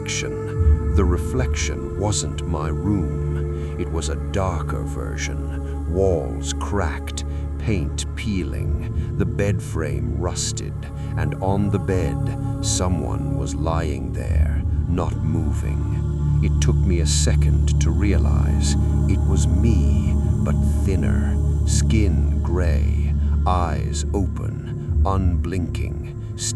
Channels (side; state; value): both; identical; correlation 1.00